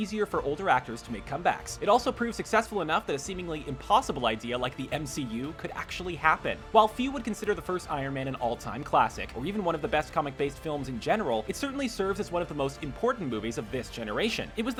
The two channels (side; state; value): both; identical; correlation 1.00